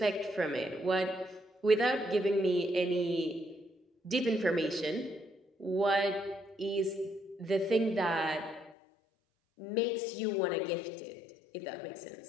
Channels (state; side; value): drops out; right; at 8.8 s